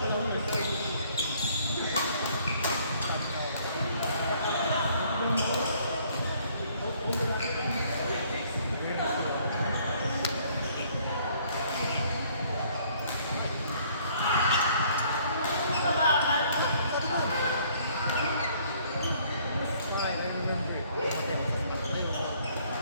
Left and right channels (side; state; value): both; inverted; correlation -0.62